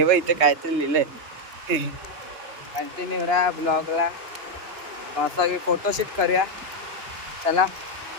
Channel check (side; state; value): left; late; 2.9 ms